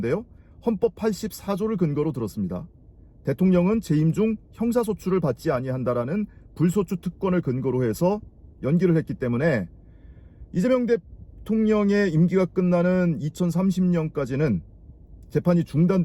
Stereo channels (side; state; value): both; identical; correlation 1.00